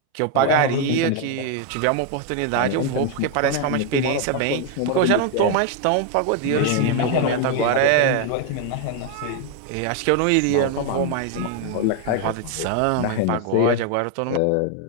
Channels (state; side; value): different; both; correlation 0.01